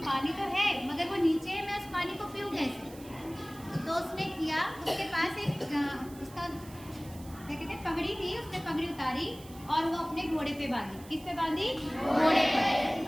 पानी तो है मगर वो नीचे है, मैं उस पानी को पीऊँ कैसे। तो उसने किया, उसके पास एक उसका क्या कहते हैं पगड़ी थी, उसने पगड़ी उतारी और वो अपने घोड़े पे बांधी। किस पे बांधी? घोड़े पर।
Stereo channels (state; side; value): noise; right; hiss, 20 dB below the sound